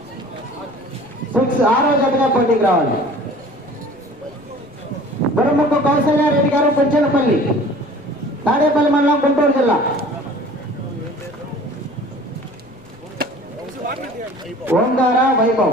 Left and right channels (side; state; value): left; noise; rumble, 29 dB below the sound